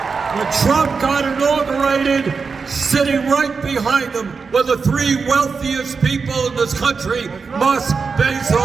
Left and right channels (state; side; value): quieter; left; 5.0 dB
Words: When Trump got inaugurated, sitting right behind him were the three wealthiest people in this country, Musk,